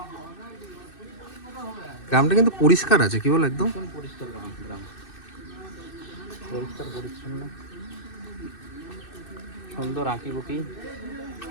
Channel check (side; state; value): right; late; 2.6 ms